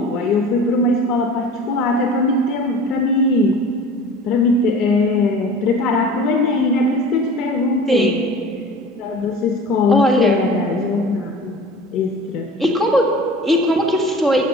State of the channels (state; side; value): normal; both; correlation 0.41